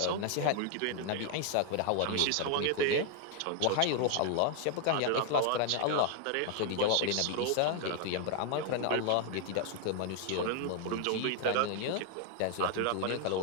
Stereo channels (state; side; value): different; both; correlation 0.00